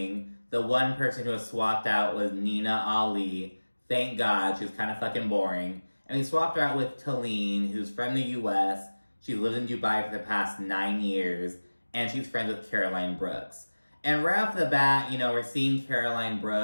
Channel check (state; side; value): inverted; both; correlation -1.00